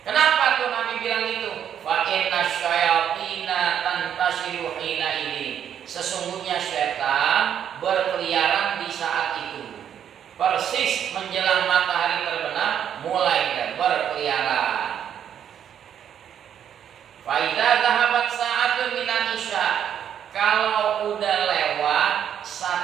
Kenapa tuh Nabi bilang gitu? Fa inna syayatina tantasiru hina ini. Sesungguhnya setan berkeliaran di saat itu. Persis menjelang matahari terbenam mulai berkeliaran. Fa idza dhahabat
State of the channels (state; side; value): quieter; left; 9.2 dB